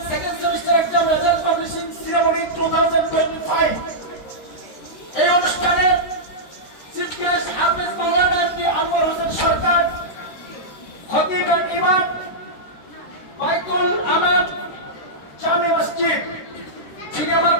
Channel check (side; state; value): right; late; 13 ms